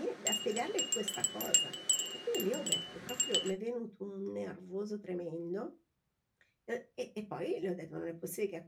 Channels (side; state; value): both; identical; correlation 1.00